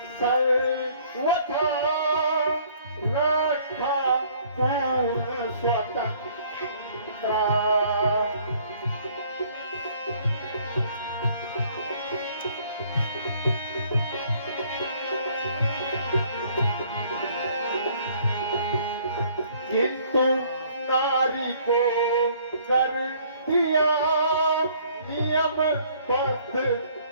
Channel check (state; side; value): inverted; both; correlation -0.59